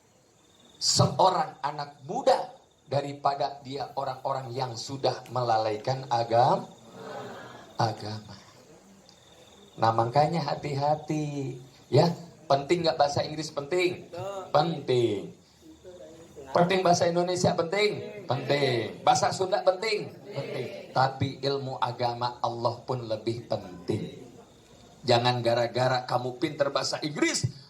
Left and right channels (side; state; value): both; identical; correlation 1.00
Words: seorang anak muda daripada dia orang-orang yang sudah melalaikan agama. Nah makanya hati-hati. Ya, penting nggak bahasa Inggris penting? Penting. Penting bahasa Indonesia penting? Penting. Bahasa Sunda penting? Penting. Tapi ilmu agama Allah pun lebih penting. Jangan gara-gara kamu pinter bahasa Inggris,